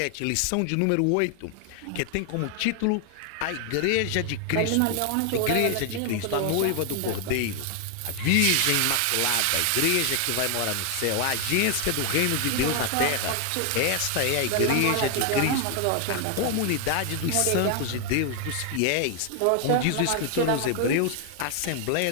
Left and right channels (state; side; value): different; both; correlation 0.00